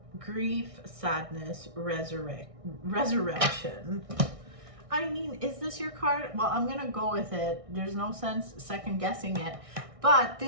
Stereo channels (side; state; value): left; late; 1.6 ms